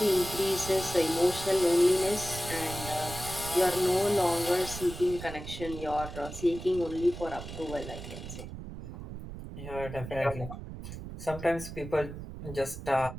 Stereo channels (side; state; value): right; noise; rumble, 10 dB below the sound